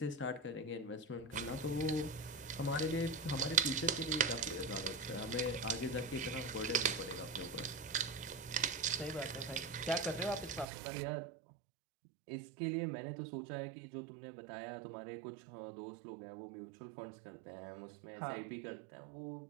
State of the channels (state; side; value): drops out; left; at 10.7 s